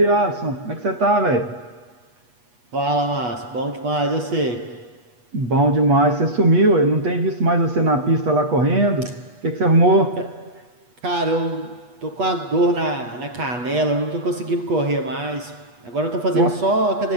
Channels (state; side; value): late; left; 8.3 ms